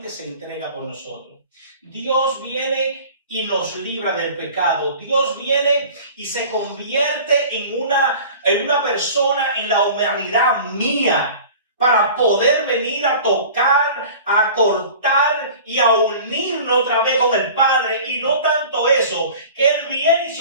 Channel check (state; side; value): inverted; both; correlation -0.42